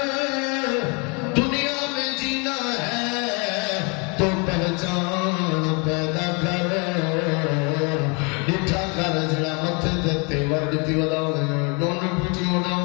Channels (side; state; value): right; quieter; 32.6 dB